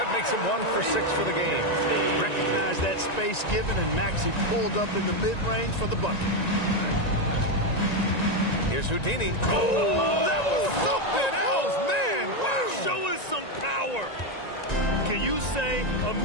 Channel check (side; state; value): right; late; 1.9 ms